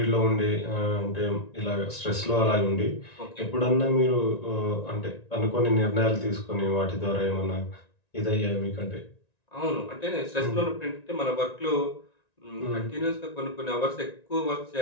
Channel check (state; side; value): late; right; 1.9 ms